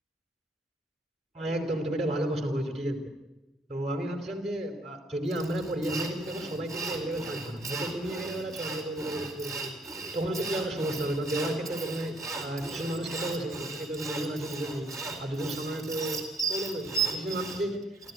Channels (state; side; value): normal; both; correlation 0.65